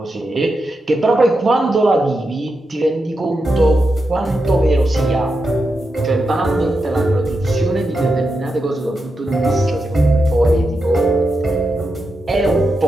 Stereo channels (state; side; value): normal; both; correlation 0.87